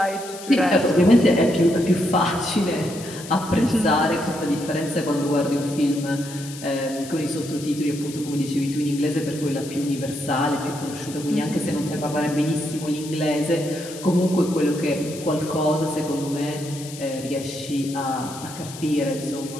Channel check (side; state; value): left; noise; hiss, 14 dB below the sound